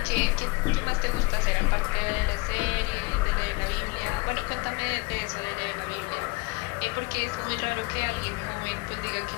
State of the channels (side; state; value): right; quieter; 25.9 dB